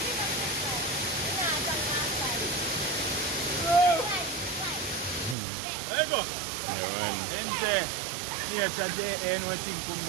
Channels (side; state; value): left; drops out; at 5.4 s